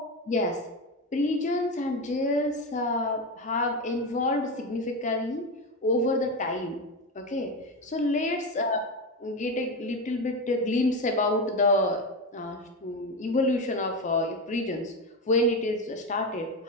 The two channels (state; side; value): normal; both; correlation 0.17